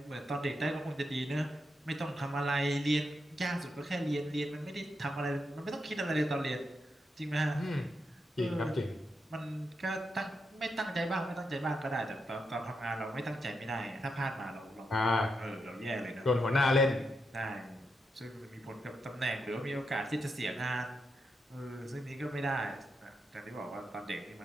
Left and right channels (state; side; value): normal; both; correlation 0.84